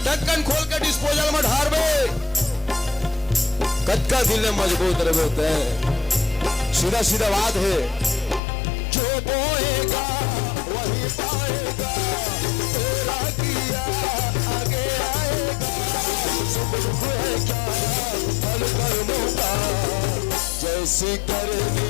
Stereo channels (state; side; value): drops out; right; at 8.4 s